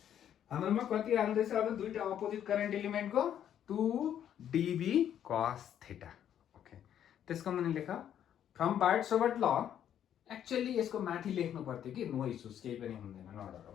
हाम्रोमा कति आउँदैछ अब? दुईटा अपोजिट करेन्ट एलिमेन्टको 2dB cos थीटा. ओके, त्यसको मुनि लेख फ्रम बार्ड-सोबर्ट ल. एक्चुअली यसको माथि लेख्नु पर्थ्यो कि नो इश्यूज, केही पनि हुँदैन, नडर हो.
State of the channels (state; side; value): quieter; right; 10.0 dB